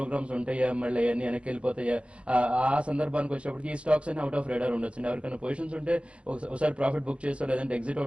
ఉంటాయా, మళ్ళీ అన్ని వెనక్కి వెళ్ళిపోతాయా, ఆ సందర్భానికి వచ్చేటప్పటికి ఈ స్టాక్స్ అన్ని అవుట్ ఆఫ్ రేడార్ ఉండొచ్చు. ఎవరికైనా పొజిషన్స్ ఉంటే ఒకసారి ప్రాఫిట్ బుక్ చేస్తా, లేదంటే ఎగ్జిట్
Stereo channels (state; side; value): late; left; 0.060 ms